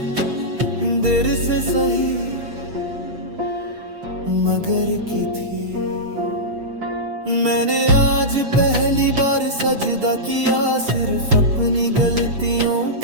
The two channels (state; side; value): late; left; 6.6 ms